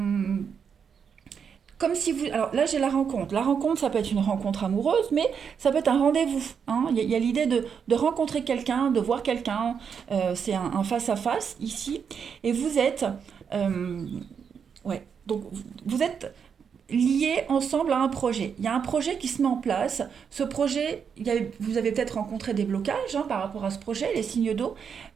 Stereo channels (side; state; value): left; quieter; 6.9 dB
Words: comme si vous... Alors là, j'ai la rencontre. La rencontre, ça peut être une rencontre amoureuse, mais ça peut être un rendez-vous, hein. Il y a l'idée de rencontrer quelqu'un, de voir quelqu'un. C'est un face-à-face ici. Et vous êtes... euh, ouais, donc vous êtes liés ensemble à un projet. Il y a un projet qui se met en place. Ce projet, vous avez peut-être rencontré des blocages, hein, par rapport à ce projet, les signes d'eau.